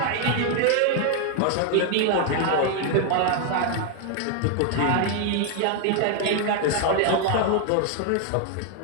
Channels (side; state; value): both; different; correlation 0.00